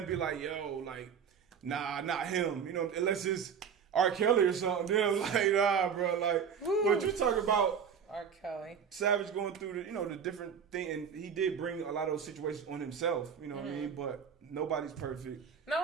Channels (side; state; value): left; quieter; 7.1 dB